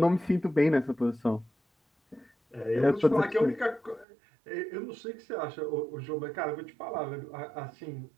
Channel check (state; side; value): drops out; left; at 4.0 s